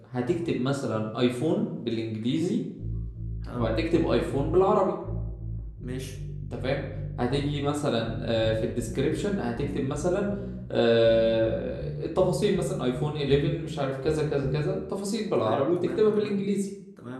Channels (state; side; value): identical; both; correlation 1.00